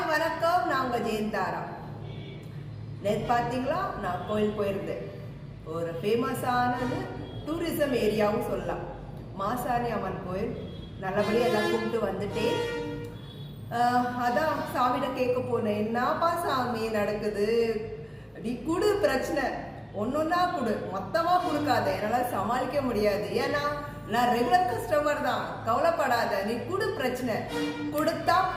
வணக்கம், நான் உங்கள் ஜெயந்தாரா. நேற்று பார்த்தீங்களா, நான் கோயில் போயிருந்தேன். ஒரு ஃபேமஸானது டூரிசம் ஏரியாவும் சொல்லலாம், மாசாணி அம்மன் கோயில். நல்லபடியாக எல்லாம் கூப்பிட்டு வந்துட்டேன். அதான் சாமிகிட்ட கேட்க போனேன், என்னப்பா சாமி நடக்குது, நீ குடு, பிரச்சனை ஒன்னொன்னா குடு, மொத்தமா கொடுக்காத, என்னால் சமாளிக்க முடியாது. ஏன்னா நான் ரெகுலர் கஸ்டமர் தான், கவலைப்படாத, நீ குடு, பிரச்சனை கொடுத்தா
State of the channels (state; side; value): identical; both; correlation 1.00